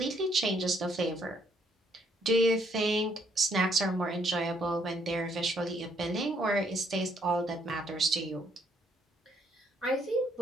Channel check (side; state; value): both; normal; correlation 0.69